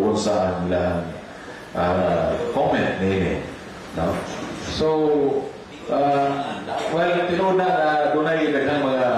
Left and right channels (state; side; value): identical; both; correlation 1.00